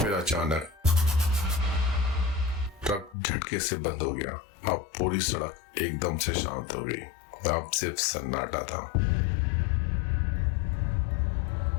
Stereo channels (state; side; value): drops out; right; at 3.2 s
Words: अचानक ट्रक झटके से बंद हो गया। अब पूरी सड़क एकदम से शांत हो गई। अब सिर्फ सन्नाटा था।